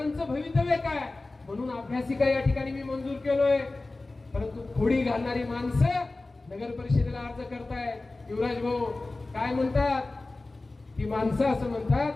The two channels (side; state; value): right; quieter; 3.2 dB